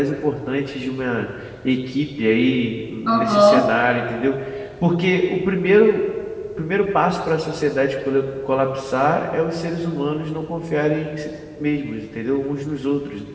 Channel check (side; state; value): both; identical; correlation 1.00